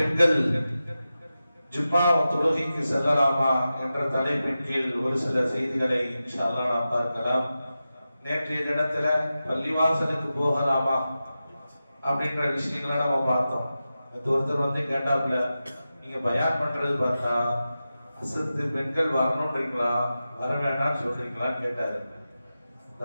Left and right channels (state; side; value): inverted; both; correlation -0.93